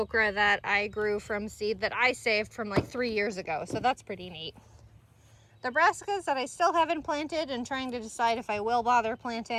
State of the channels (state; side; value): identical; both; correlation 1.00